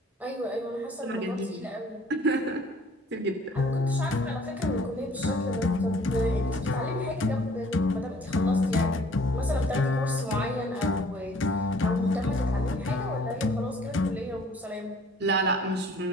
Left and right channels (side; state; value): both; normal; correlation 0.55